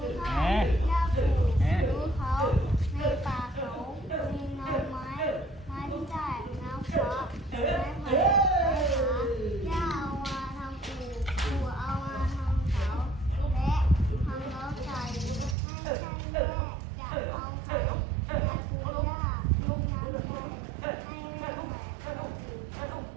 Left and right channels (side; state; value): left; drops out; at 15.6 s